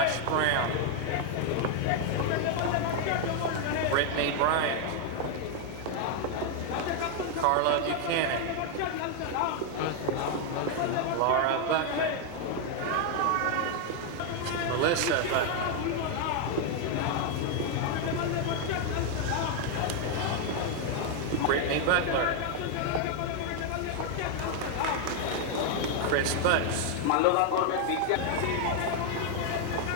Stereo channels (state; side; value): different; both; correlation 0.00